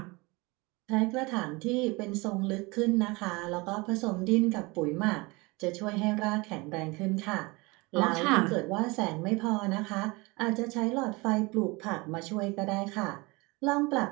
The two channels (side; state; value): left; quieter; 25.2 dB